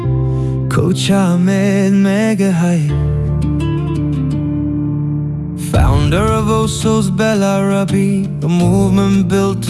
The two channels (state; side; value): identical; both; correlation 1.00